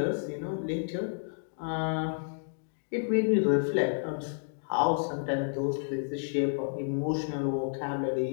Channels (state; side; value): silent; right; digital silence